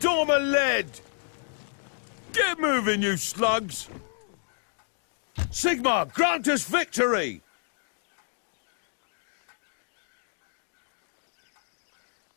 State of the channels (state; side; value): silent; right; digital silence